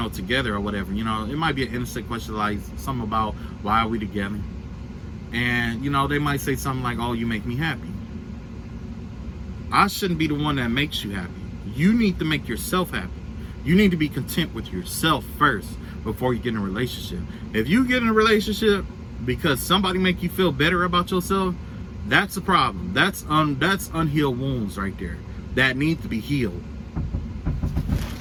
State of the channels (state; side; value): identical; both; correlation 1.00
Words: together or whatever. It might be an innocent question, like something about why are we together? And, they might say something like, oh, you make me happy. I shouldn't be the one that makes you happy. You need to make yourself happy. You need to be content with yourself first before you get in a relationship. If you get in a relationship because somebody make you feel better about yourself, that's a problem. That's unhealed wounds right there that need to be healed.